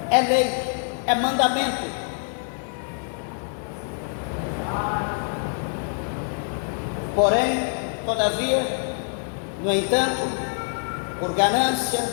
é lei, é mandamento. Porém, todavia, no entanto, por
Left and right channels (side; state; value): right; silent; 62 dB below the other